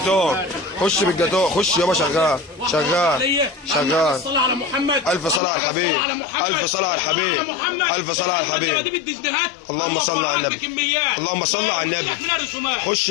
خش بالجاتون. خش يابا. شغال شغال شغال. صلى على محمد. الف صلاه على الحبيب. الف صلاه على الحبيب. الف صلاه على الحبيب. اللهم صل على النبي. اللهم صل على النبي. خش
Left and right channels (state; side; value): drops out; right; at 5.4 s